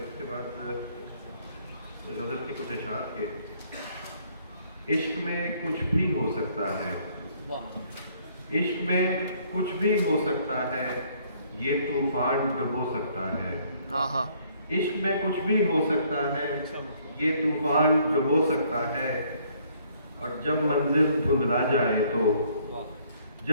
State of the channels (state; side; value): inverted; both; correlation -0.64